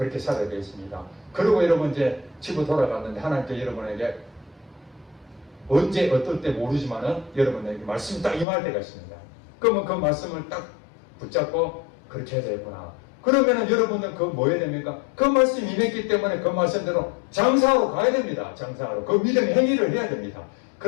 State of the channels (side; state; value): right; drops out; at 8.5 s